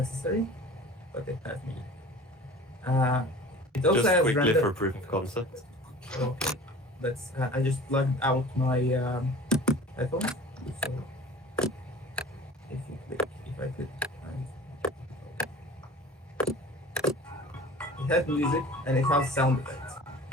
But it has music. It also Just has quickly render. for proof of concept. Okay, let's. I just plugged out my headphones. So if you click, if I click, it has music and it has sound effects.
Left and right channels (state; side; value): normal; both; correlation 0.42